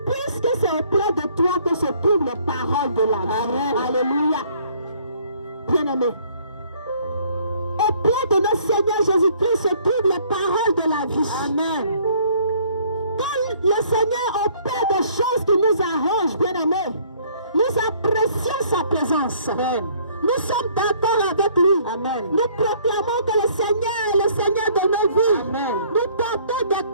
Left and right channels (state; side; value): inverted; both; correlation -0.60